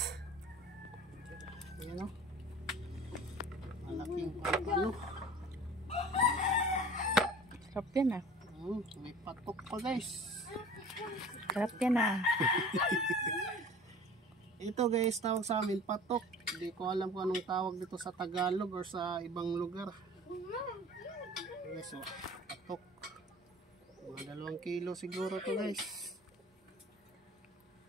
Ayan, oh, malaking ano. Sarap yan ah. May patok pa guys. Sarap yan ah. Ito guys, tawag sa amin patok. Hindi ko alam kung anong tawag dito sa Tagalog or sa ibang lugar. Guys, oh, patok. Mga 2 kilo siguro to guys.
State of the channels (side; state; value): both; normal; correlation 0.43